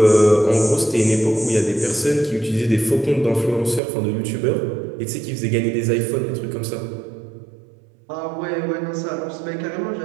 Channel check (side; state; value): left; drops out; at 3.8 s